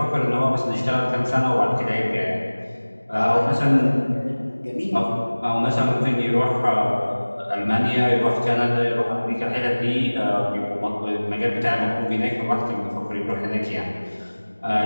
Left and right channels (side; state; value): both; inverted; correlation -1.00